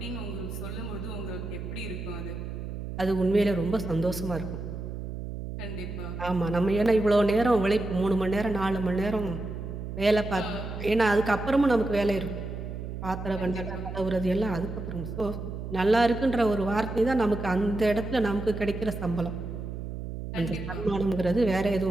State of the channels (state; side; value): noise; right; hum, 7 dB below the sound